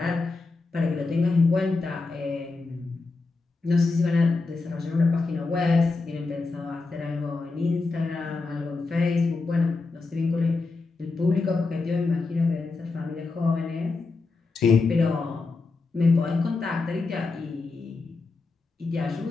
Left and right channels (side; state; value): right; quieter; 3.8 dB